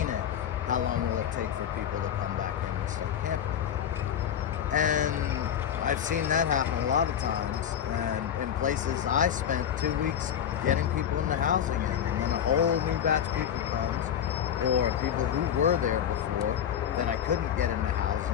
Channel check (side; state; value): right; quieter; 9.2 dB